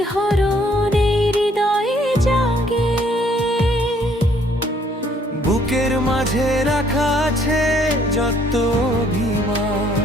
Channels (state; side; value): normal; both; correlation 0.64